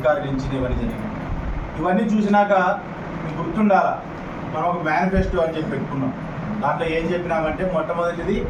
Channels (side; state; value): both; identical; correlation 1.00